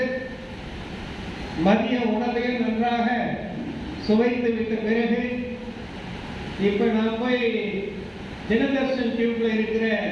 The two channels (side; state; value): both; identical; correlation 1.00